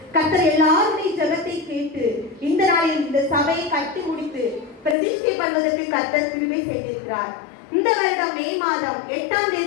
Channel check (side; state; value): right; drops out; at 5.0 s